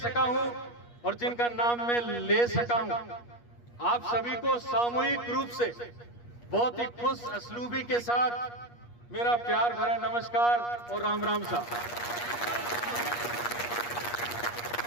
हूं और जिनका नाम मैं ले सका हूं, आप सभी को सामूहिक रूप से बहुत ही खुश असलूबी के साथ मेरा प्यार भरा नमस्कार और राम राम सा।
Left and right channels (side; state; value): right; late; 8.4 ms